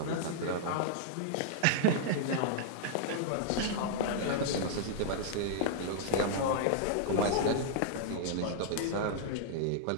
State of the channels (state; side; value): different; both; correlation -0.01